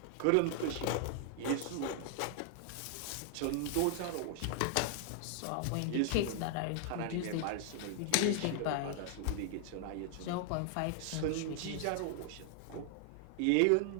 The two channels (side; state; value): both; different; correlation 0.00